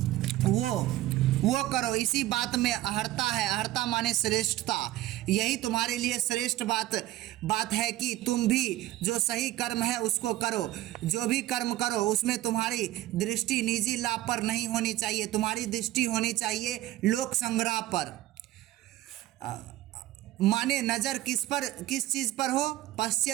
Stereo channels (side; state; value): left; quieter; 15.6 dB